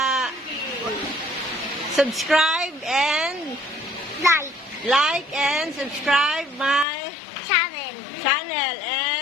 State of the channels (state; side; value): drops out; right; at 6.9 s